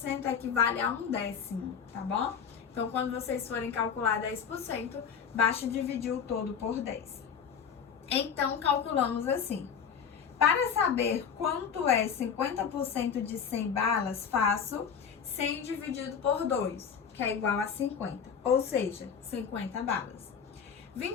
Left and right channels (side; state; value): right; quieter; 7.0 dB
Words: equivale a 1/10, tá bom? Então, quando vocês forem calcular 10%, basta dividir o todo por 10. Então, calculamos assim. Para saber quanto é 50% de 100 balas, faço 100 dividido por 2, que é igual a 50, ou seja, 50 balas.